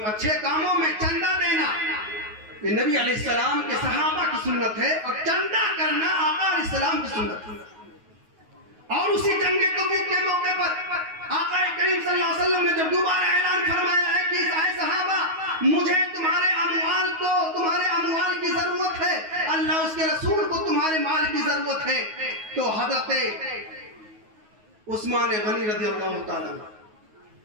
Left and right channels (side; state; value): left; late; 9.4 ms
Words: اچھے کاموں میں چندہ دینا یہ نبی علیہ السلام کے صحابہ کی سنت ہے, اور چندہ کرنا آقا علیہ السلام کی سنت ہے. اور اسی جنگ تبوک کے موقع پر آقا کریم صلی اللہ علیہ وسلم نے جب دوبارہ اعلان فرمایا ہے کہ اے صحابہ, مجھے تمہارے اموال کی ضرورت ہے, اللہ اس کے رسول کو تمہارے مال کی ضرورت ہے, تو حضرت عثمان غنی رضی اللہ تعالیٰ